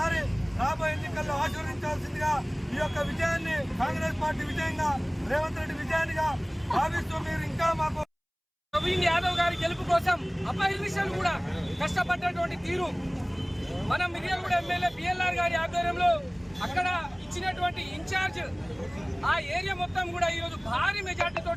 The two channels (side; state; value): both; identical; correlation 1.00